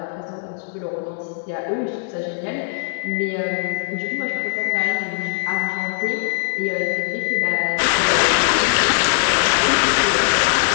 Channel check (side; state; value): right; silent; 65 dB below the other